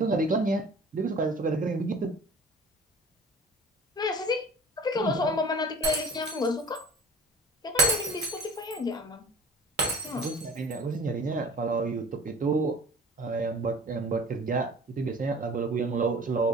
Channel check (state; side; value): normal; both; correlation 0.44